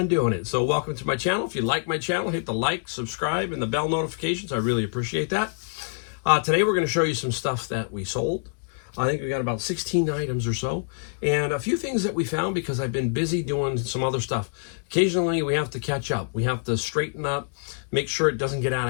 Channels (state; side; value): silent; right; digital silence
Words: doing it. So welcome to my channel. If you like my channel, hit the like, subscribe, and the bell notifications. I really appreciate that. Today we're going to show you some stuff that we sold. I think we got about 16 items or so, and a few things that we found because I've been busy doing some other stuff. Occasionally we have to catch up. We have to straighten up, make sure it doesn't get out